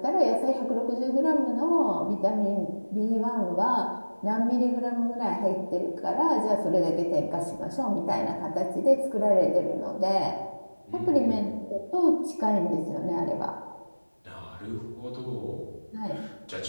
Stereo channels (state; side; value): inverted; both; correlation -1.00